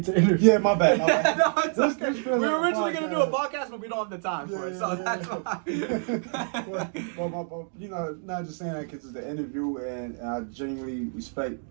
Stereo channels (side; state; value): left; silent; 60 dB below the other